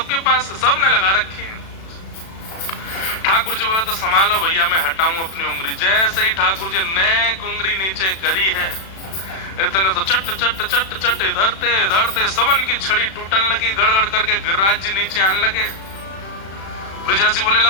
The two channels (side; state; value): right; late; 36 ms